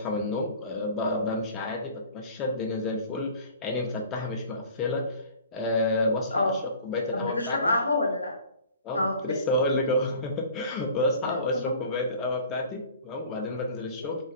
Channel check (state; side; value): inverted; both; correlation -0.45